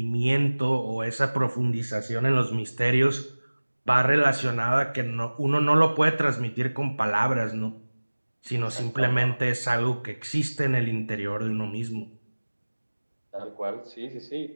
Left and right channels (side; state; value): both; inverted; correlation -1.00